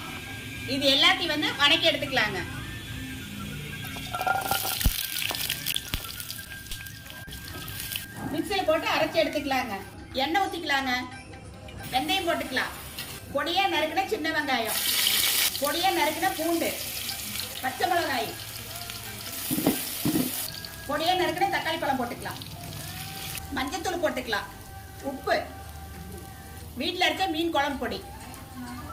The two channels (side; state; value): both; identical; correlation 1.00